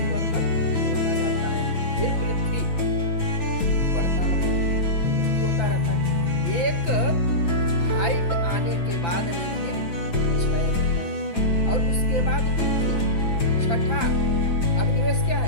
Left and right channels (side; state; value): right; late; 5.9 ms